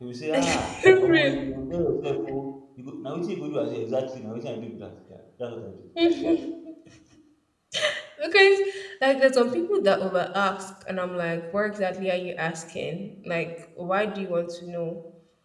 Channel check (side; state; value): both; identical; correlation 1.00